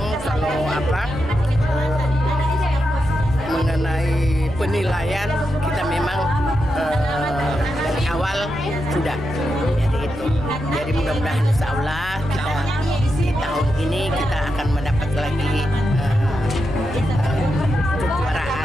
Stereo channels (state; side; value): noise; left; rumble, 16 dB below the sound